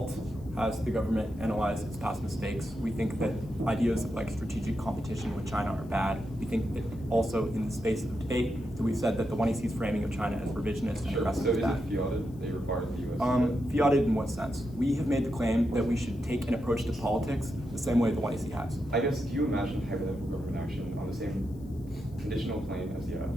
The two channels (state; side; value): noise; left; hiss, 30 dB below the sound